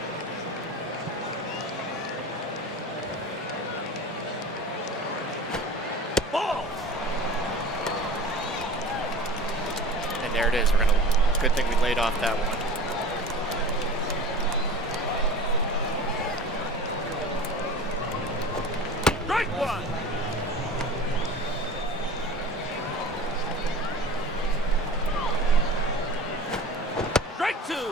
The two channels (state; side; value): normal; both; correlation 0.37